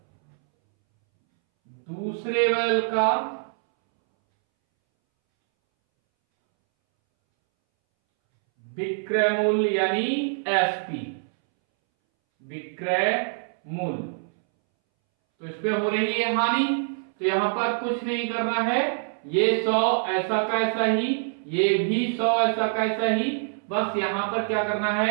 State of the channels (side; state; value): left; silent; 62 dB below the other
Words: बैल का विक्रय मूल्य यानी एसपी, विक्रय मूल्य तो इस पे हो रही है हानि, तो यहां पर कुछ नहीं करना है, ये 100 ऐसा का ऐसा ही, ये भी 100 ऐसा का ऐसा ही, बस यहां पर क्या करना